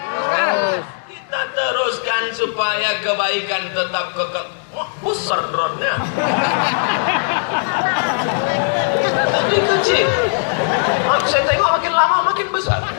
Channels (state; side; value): silent; right; 67 dB below the other